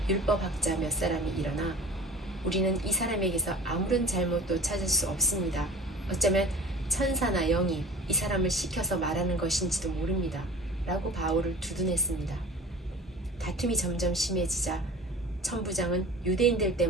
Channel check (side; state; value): both; normal; correlation 0.39